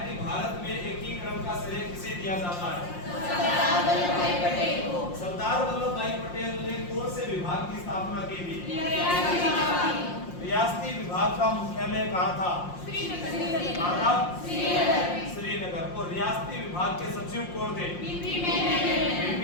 कि भारत में एकीकरण का श्रेय किसे दिया जाता है? सरदार वल्लभ भाई पटेल ने कौन से विभाग की स्थापना की थी? रियासती विभाग का मुख्यालय कहाँ था? श्रीनगर। और रियासती विभाग के सचिव कौन थे?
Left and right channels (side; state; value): right; late; 5.6 ms